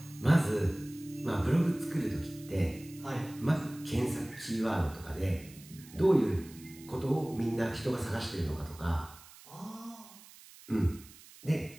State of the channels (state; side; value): noise; right; hiss, 20 dB below the sound